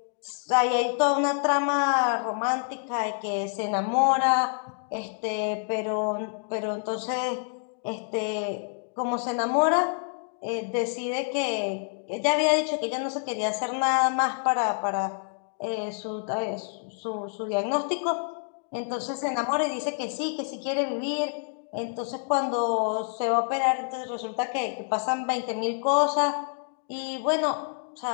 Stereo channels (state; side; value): silent; right; 60 dB below the other